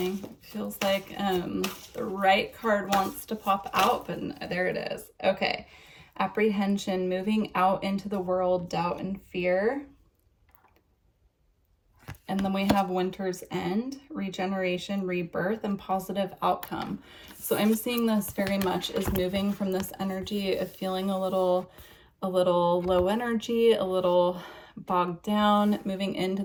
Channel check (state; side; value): identical; both; correlation 1.00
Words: Feels like the right card wants to pop out, but there it is. Okay. Apprehension, moving out into the world, doubt and fear. And then we have winter's end, regeneration, rebirth, and positive outcome. So I'm seeing this very much as moving from this energy of feeling a little a little low energy, a little bogged down, moving into